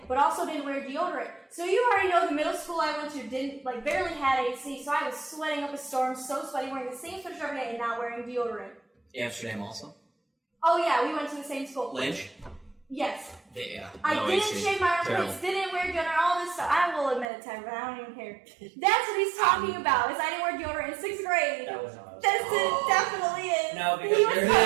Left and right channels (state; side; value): drops out; left; at 17.2 s